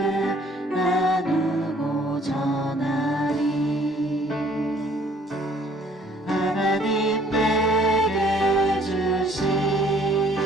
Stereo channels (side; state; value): both; normal; correlation 0.59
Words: 나누고 전하리. 하나님 내게 주신